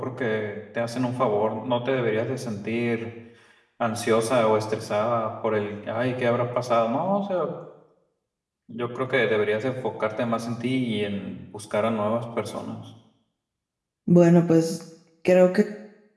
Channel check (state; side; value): identical; both; correlation 1.00